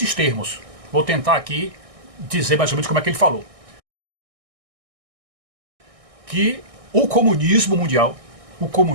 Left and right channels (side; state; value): left; late; 1.6 ms